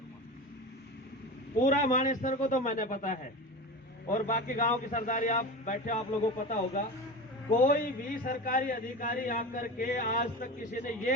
पूरा मानेसर को तो मैंने पता है, और बाकी गांव की सरदारी आप बैठे आप लोगों को पता होगा, कोई भी सरकारी अधिकारी आकर के आज तक किसी ने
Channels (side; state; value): both; normal; correlation 0.28